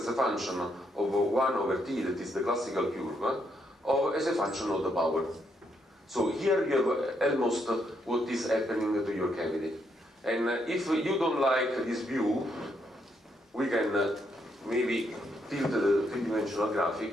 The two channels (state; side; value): normal; both; correlation 0.76